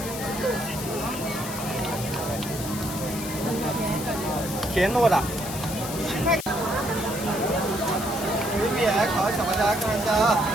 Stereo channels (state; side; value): noise; left; hiss, 9 dB below the sound